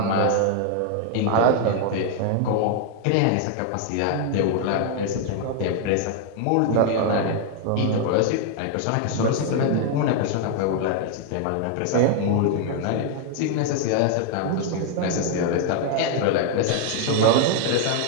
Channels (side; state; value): both; different; correlation 0.00